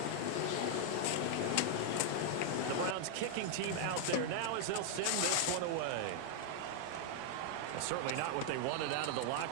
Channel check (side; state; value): both; different; correlation 0.00